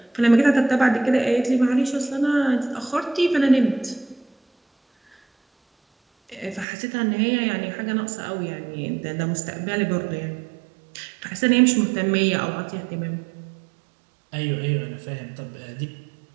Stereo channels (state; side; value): drops out; left; at 6.7 s